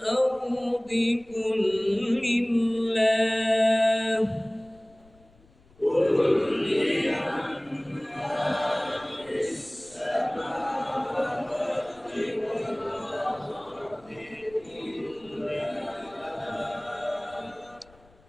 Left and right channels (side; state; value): left; noise; rumble, 28 dB below the sound